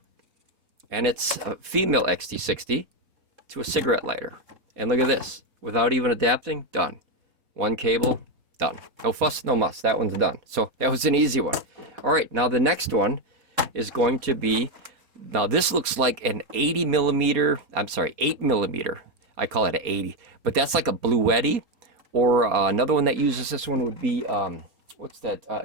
And it's a female XT60 to a cigarette lighter. And look at this. Without even adapting, done. One cable, done. No fuss, no muss. That one's done. So that was an easy one. All right, now the next one is going to be, now this looks like an 8 millimeter. I call it an 80. But that's like a Bluetti. Or another one that uses this one would be, what's that?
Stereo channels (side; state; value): left; late; 4.2 ms